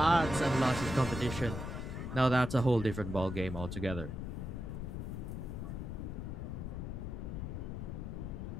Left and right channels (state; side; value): noise; left; rumble, 5 dB below the sound